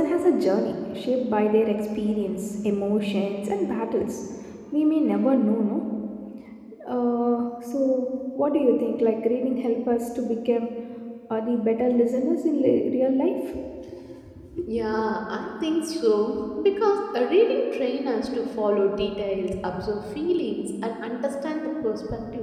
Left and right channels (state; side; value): identical; both; correlation 1.00